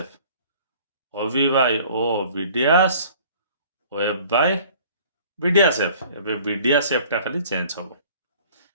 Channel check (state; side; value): inverted; both; correlation -0.51